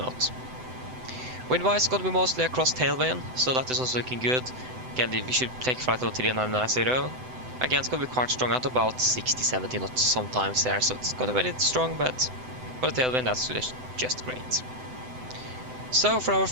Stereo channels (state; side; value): late; left; 7.9 ms